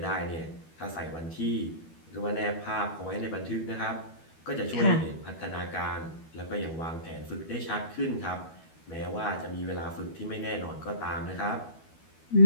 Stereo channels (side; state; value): right; late; 12 ms